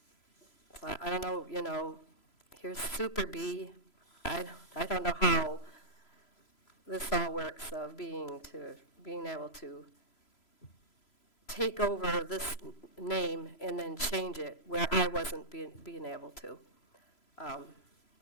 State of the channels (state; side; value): late; right; 3.0 ms